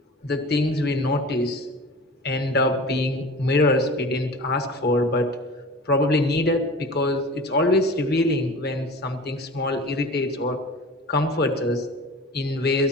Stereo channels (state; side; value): normal; both; correlation 0.37